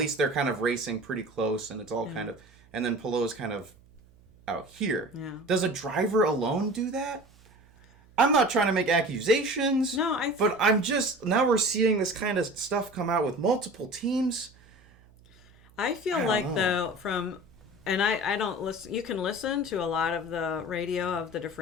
they're kind of racing pretty close, and it's all kind of, and then Pallou's kind of out here. Yeah. Does a driver alone do that? I'm not trying to make accusations. No, but I'm just, now we're seeing this kind of stuff come out with multiple teams. I feel like though, and I don't listen. You can listen to a lot of the radio of the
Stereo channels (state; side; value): noise; right; hum, 28 dB below the sound